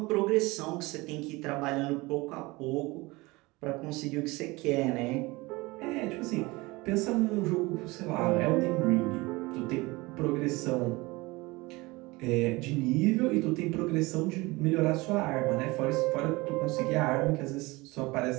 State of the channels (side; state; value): left; quieter; 22.7 dB